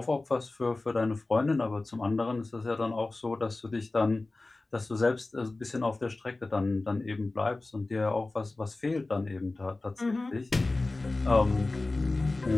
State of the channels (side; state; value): right; quieter; 3.1 dB